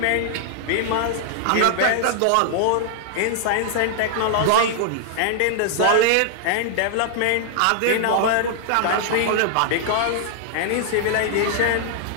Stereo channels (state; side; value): different; both; correlation -0.01